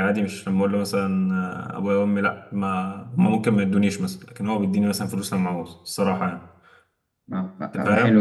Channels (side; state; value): both; identical; correlation 1.00